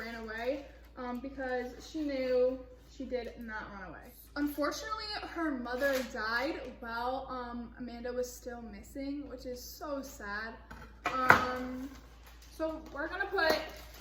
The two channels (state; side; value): identical; both; correlation 1.00